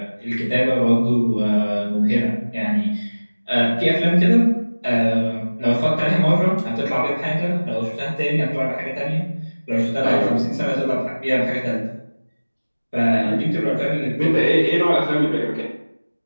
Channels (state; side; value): inverted; both; correlation -1.00